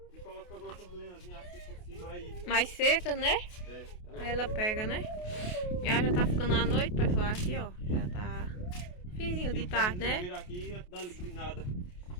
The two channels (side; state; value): right; late; 28 ms